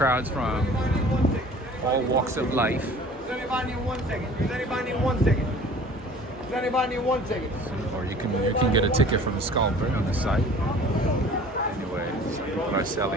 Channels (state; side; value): normal; both; correlation 0.47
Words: from all walks of life. Does anybody need 1 second? Does anybody need 1 second? Does anybody need 1 second? Or you can get a ticket from the Scalper on the site. Anyway, some people are